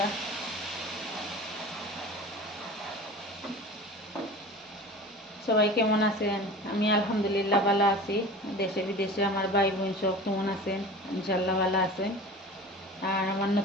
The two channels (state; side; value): normal; both; correlation 0.37